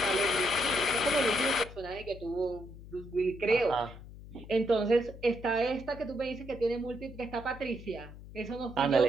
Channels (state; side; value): noise; left; hum, 15 dB below the sound